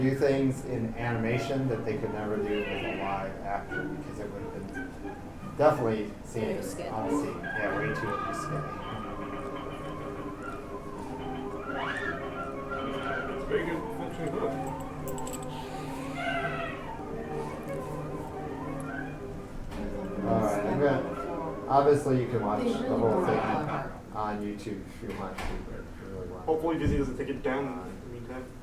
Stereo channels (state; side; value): identical; both; correlation 1.00